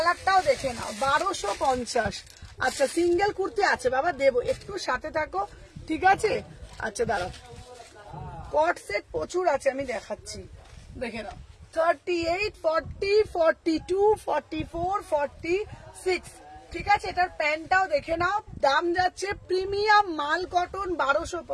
দেখে নাও, 1250। আচ্ছা, সিঙ্গেল কুর্তি আছে বাবা, দেবো, একটু সাথে থাকো, ঠিক আছে? আচ্ছা দাঁড়াও, কট সেট প্রচুর আছে, আমি দেখাচ্ছি, দেখে নাও। 38, 40, 42, 44, 46 ঠিক আছে? এটার প্যান্টটাও দেখে নাও। দাম যাচ্ছে প্রিমিয়াম মাল কটন,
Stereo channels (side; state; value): both; identical; correlation 1.00